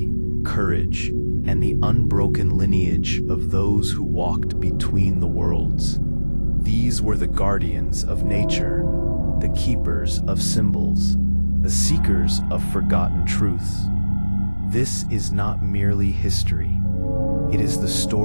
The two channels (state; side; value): inverted; both; correlation -1.00